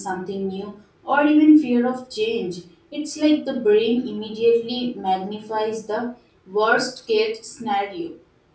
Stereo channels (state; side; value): identical; both; correlation 1.00